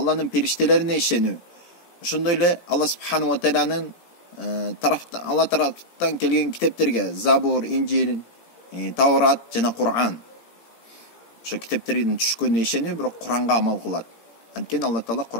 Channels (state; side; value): late; right; 17 ms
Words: periştelerine işeniyor. Şundayla Allah Subhanahu ve Teala'nın Allah taraftan kelgen kitaplarga Zabur, İncil, Tavrat jana Kur'an. Şu kitapların düşkönüne işeniyor, biroq Kur'an'a amal kılat. Antkeni Allah Taala